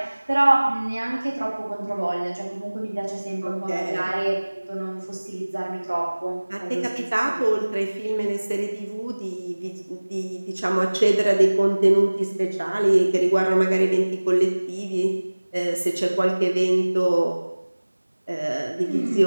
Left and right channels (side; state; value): both; inverted; correlation -1.00